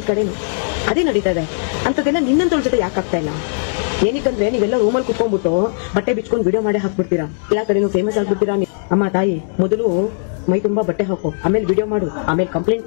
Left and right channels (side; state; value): right; silent; digital silence